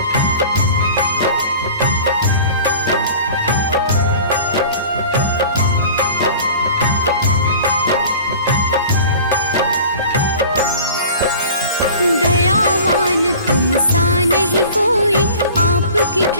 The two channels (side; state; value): both; inverted; correlation -0.42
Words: दयावान तुम सा नहीं कोई, आपकी